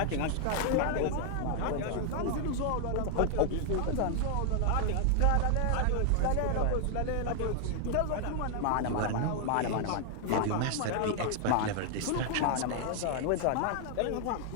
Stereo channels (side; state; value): both; different; correlation 0.00